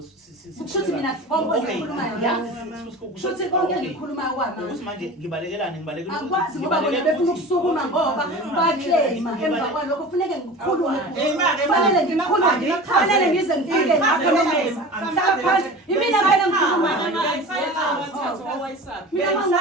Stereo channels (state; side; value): normal; both; correlation 0.35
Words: kushuthi mina kushuthi konke engikhulumayo kwamanje ukuthi manje ngibalekelane akwazi ngoba bona befuna ukusukuma ngoba baclaima emva kwalokho kufuneke ngikhulume fanele ngikhulume fanele ngize ngifike lapho ngihlala phansi imina phela ngikhuluma